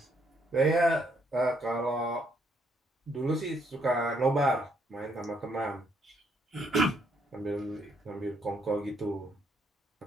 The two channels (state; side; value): normal; both; correlation 0.72